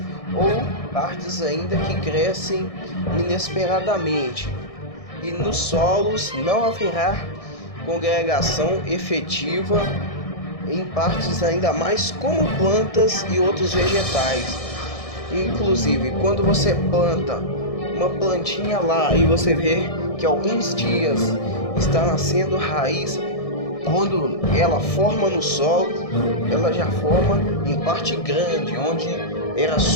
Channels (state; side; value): late; right; 1.6 ms